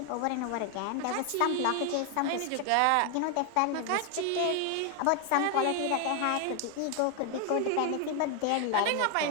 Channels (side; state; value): both; different; correlation 0.01